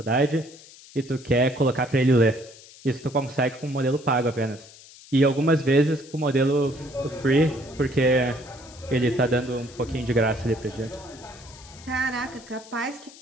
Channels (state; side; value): noise; left; hiss, 21 dB below the sound